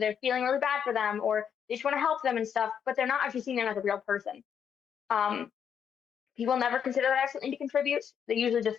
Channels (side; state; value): right; quieter; 8.0 dB